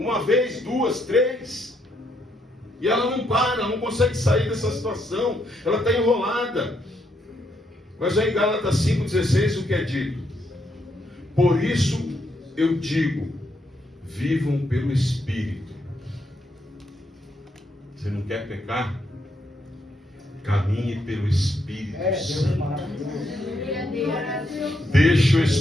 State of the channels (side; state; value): both; normal; correlation 0.76